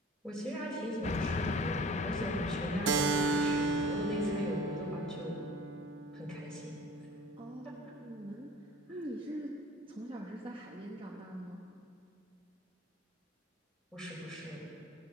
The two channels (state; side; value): normal; both; correlation 0.45